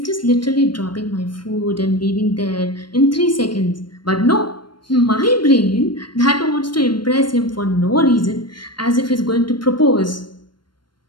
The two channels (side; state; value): right; late; 0.72 ms